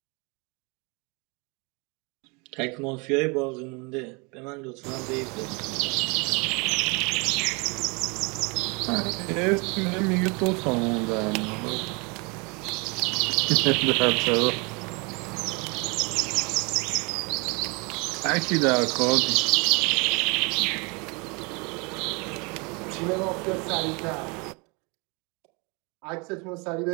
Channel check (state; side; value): quieter; left; 30.0 dB